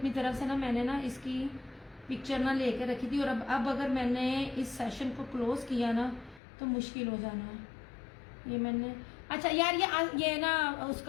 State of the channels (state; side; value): drops out; right; at 6.4 s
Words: तरफ से ना, मैंने ना इसकी पिक्चर ना लेके रखी थी। और अब अगर मैंने इस सेशन को क्लोज किया ना तो मुश्किल हो जाना है। ये मैंने, अच्छा यार ये ना